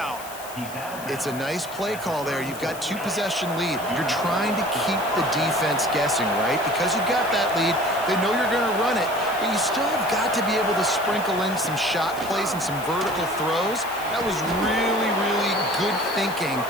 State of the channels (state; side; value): noise; left; hiss, 15 dB below the sound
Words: It's a nice play call there. You've got two-possession lead. You're trying to keep the defense guessing, right? Because you've got that lead, they know you're going to run it, but you still have got to be able to sprinkle in some shot plays and some vertical throws. That was really, really good thinking